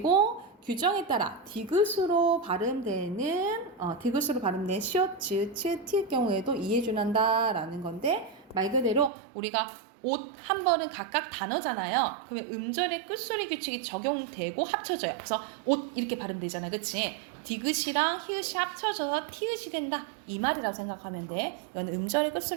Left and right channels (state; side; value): drops out; left; at 9.1 s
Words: 규정에 따라 디귿으로 발음되는 시옷, 지읒, 치읒, 티의 경우에도 이해준한다라는 건데 말 그대로 우리가 옷 한 번은 각각 단어잖아요. 그러면 음절의 끝소리 규칙이 적용되고 합쳐져요. 그래서 옷 이렇게 발음되잖아, 그치? 디귿이랑 히읗이 합쳐져서 티읕이 된다. 이 말이라고 생각하면 돼. 이건 음절의